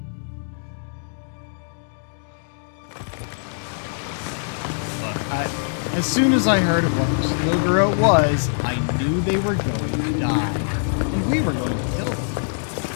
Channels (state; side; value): silent; right; digital silence